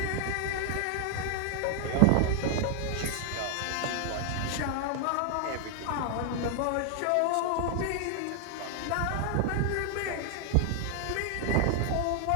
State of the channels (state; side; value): different; both; correlation 0.00